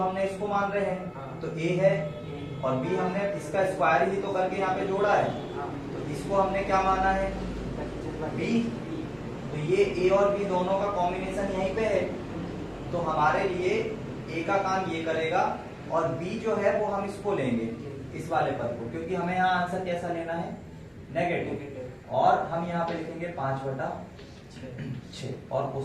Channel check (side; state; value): both; identical; correlation 1.00